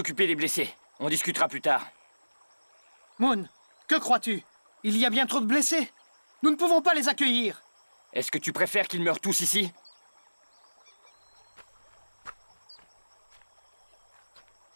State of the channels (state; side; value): inverted; both; correlation -1.00